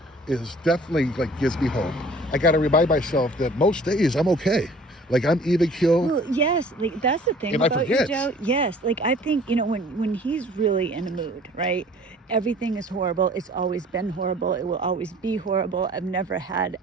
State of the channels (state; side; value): normal; both; correlation 0.50